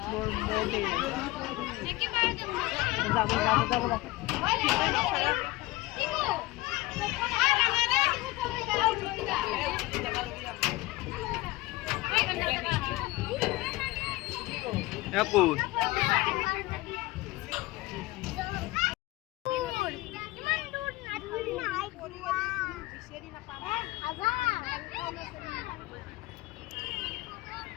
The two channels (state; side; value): quieter; right; 20.0 dB